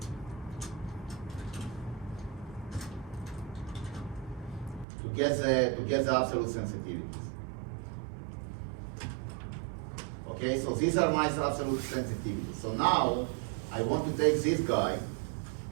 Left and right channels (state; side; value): drops out; left; at 4.9 s